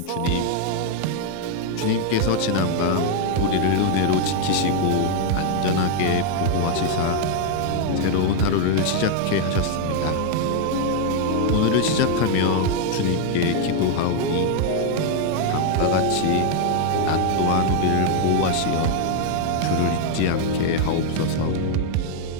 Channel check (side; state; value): both; different; correlation 0.00